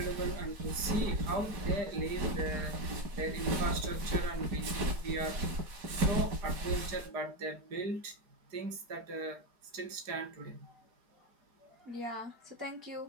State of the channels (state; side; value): late; left; 4.9 ms